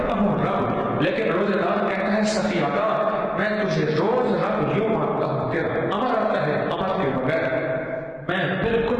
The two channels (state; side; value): identical; both; correlation 1.00